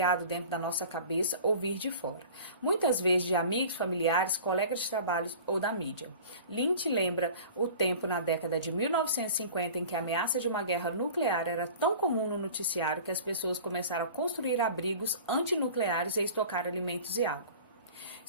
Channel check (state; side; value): inverted; both; correlation -0.41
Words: dentro da nossa cabeça ou vir de fora, muitas vezes de amigos, familiares, colegas de trabalho ou da mídia. Lynch lembra o tempo na década de 1950 em que a ameaça de uma guerra nuclear era tão comum no noticiário que as pessoas começaram a construir abrigos antinucleares e estocar alimentos e água.